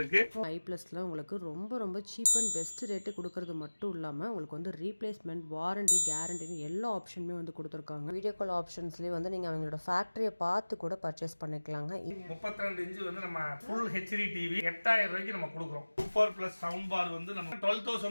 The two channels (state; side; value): inverted; both; correlation -1.00